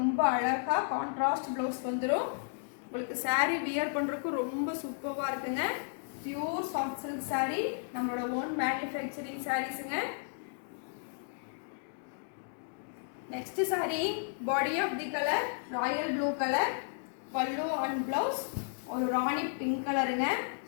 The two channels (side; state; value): right; silent; digital silence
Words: அழகாக கான்ட்ராஸ்ட் ப்ளவுஸ் வந்துடும். உங்களுக்கு saree வியர் பண்ணுறதுக்கு ரொம்ப சூப்பராக இருக்குங்க. பியூர் சாஃப்ட் சில்க் saree நம்மளோட ஓன் மேனுஃபேக்சரிங் சாரீஸுங்க. Next saree body of the colour royal blue colour. Pallu and blouse ஒரு ராணி பிங்க் கலருங்க.